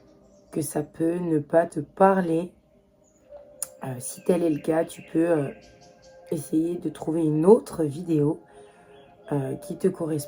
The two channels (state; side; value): identical; both; correlation 1.00